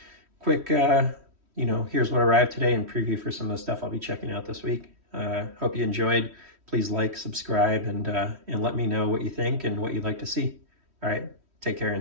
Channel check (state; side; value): late; left; 3.1 ms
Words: quick, you know, here's what arrived today and preview for some of the stuff I'll be checking out this week. Hope you enjoyed. Please like, subscribe, and let me know what you think and what you'd like to see. All right, take care